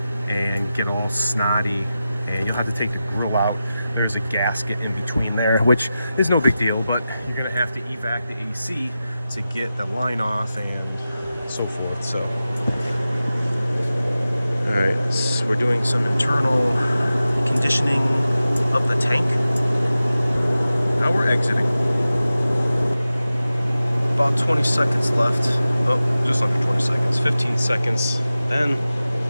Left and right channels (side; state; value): both; inverted; correlation -0.93